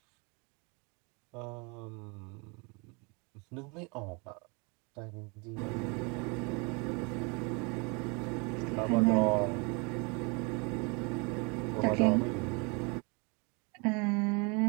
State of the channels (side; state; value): left; quieter; 31.0 dB